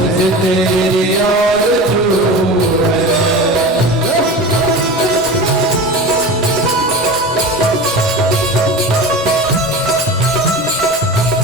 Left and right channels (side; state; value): both; normal; correlation 0.31